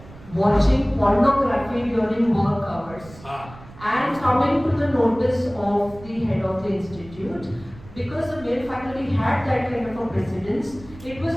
watching pornography during work hours and coming to the notice of the head of the institute, because the male faculty had that kind of a precedence, it was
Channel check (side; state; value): right; noise; rumble, 19 dB below the sound